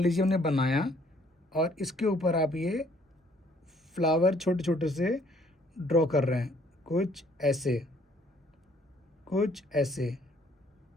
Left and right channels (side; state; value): both; normal; correlation 0.62